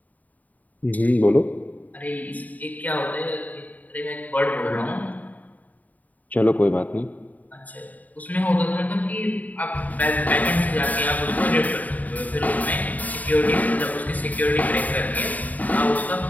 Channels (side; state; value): right; late; 0.076 ms